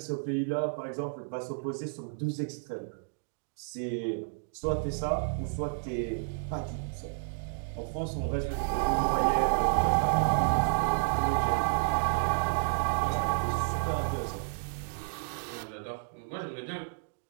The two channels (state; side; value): silent; left; digital silence